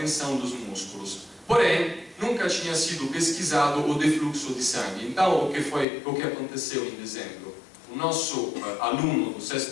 dos músculos. Porém, nunca tinha sido pesquisado o defluxo de sangue. Então, o que aconteceu em dezembro? O nosso aluno do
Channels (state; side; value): drops out; right; at 5.9 s